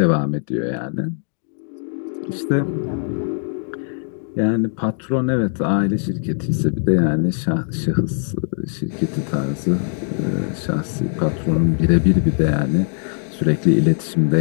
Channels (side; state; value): right; silent; 65 dB below the other